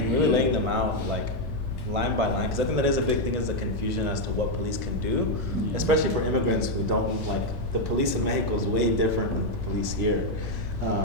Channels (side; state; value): both; normal; correlation 0.01